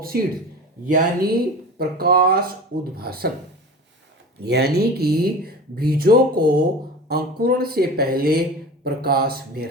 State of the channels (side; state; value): both; normal; correlation 0.34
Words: सीड्स, यानी प्रकाश उद्भासन, यानी कि बीजों को अंकुरण से पहले प्रकाश में